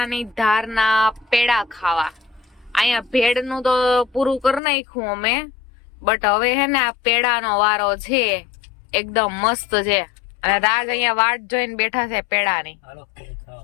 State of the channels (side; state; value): right; drops out; at 4.6 s